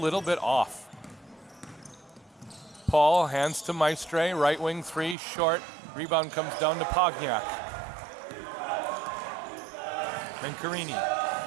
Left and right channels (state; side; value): drops out; left; at 5.2 s